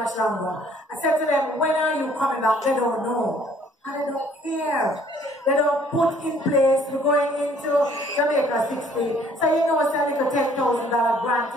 longer. I said to them, when are you coming back? They don't know. And they don't care. They don't put in place. We're going into Jamaica 60. So you know it's a little $10,000 grant.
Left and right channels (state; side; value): normal; both; correlation 0.59